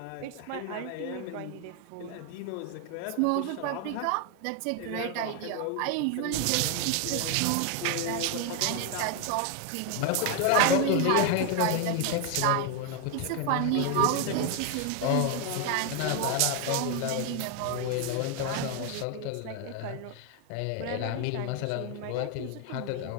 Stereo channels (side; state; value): both; different; correlation 0.01